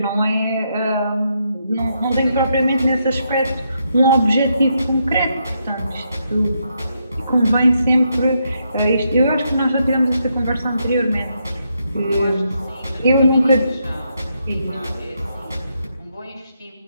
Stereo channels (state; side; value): inverted; both; correlation -0.79